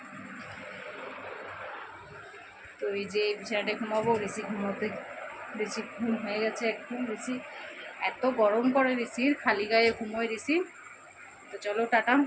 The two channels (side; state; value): both; identical; correlation 1.00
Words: তো এই যে বিছানাটায় ঘুমাবো। ঋষি ঘুমোতে, ঋষি ঘুম হয়ে গেছে একদম। ঋষি এত গরম করে, ঋষির খালি গায়ে ঘুমোয় ঋষি। তো চলো টাটা।